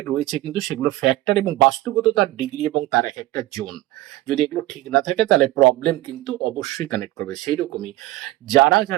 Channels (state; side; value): quieter; left; 17.0 dB